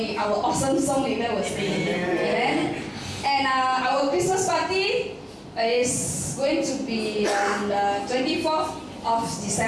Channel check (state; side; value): identical; both; correlation 1.00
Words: our awesome song leader will sing. Amen. And our Christmas party is going to be on the 24th of